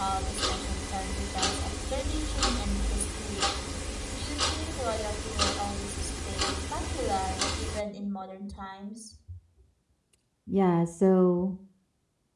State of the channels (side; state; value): both; identical; correlation 1.00